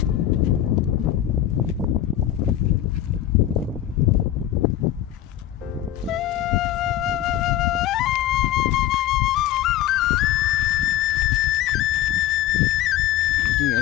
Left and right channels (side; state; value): right; quieter; 12.3 dB